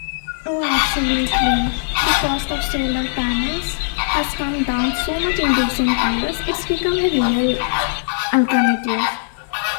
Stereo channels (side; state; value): right; silent; digital silence